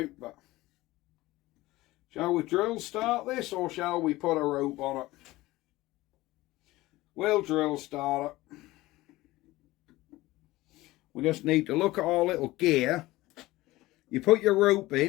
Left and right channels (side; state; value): right; quieter; 18.5 dB